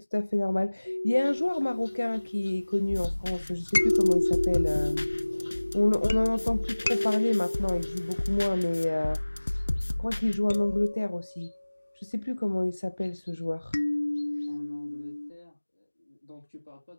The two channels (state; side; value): inverted; both; correlation -1.00